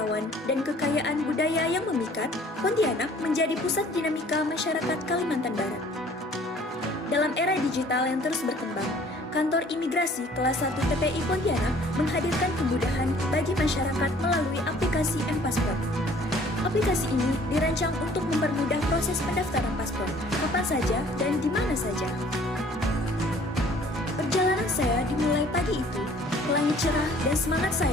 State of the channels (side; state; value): both; normal; correlation 0.54